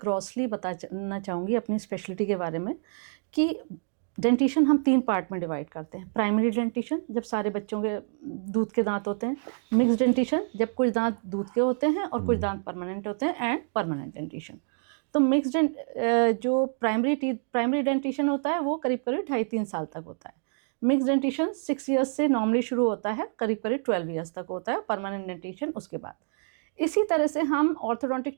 बताना चाहूँगी अपनी स्पेशलिटी के बारे में कि डेंटिशन हम 3 पार्ट में डिवाइड करते हैं। प्राइमरी डेंटिशन जब सारे बच्चों के दूध के दांत होते हैं, मिक्स डेंटिशन जब कुछ दांत दूध के होते हैं और कुछ दांत परमानेंट होते हैं, एंड परमानेंट डेंटिशन। तो मिक्स जो प्राइमरी डेंटिशन होता है वो करीब करीब 2.5-3 साल तक होता है। मिक्स डेंटिशन 6 ईयर्स से नॉर्मली शुरू होता है, करीब करीब 12 ईयर्स तक होता है, परमानेंट डेंटिशन उसके बाद। इसी तरह से हम ऑर्थोडोंटिक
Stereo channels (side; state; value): left; silent; 60 dB below the other